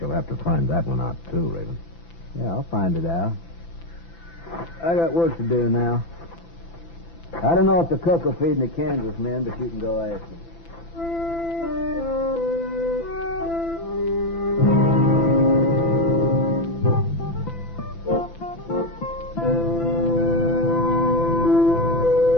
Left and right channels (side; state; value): right; late; 5.9 ms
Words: you'll have to find that one out, too, Raven. Yeah, I'll find it out. I got work to do now. I don't know if the cook will feed the Kansas men, but you can go ask him.